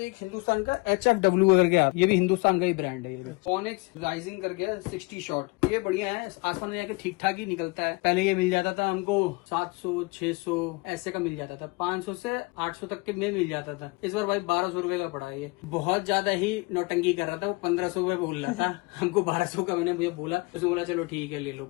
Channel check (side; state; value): right; quieter; 26.2 dB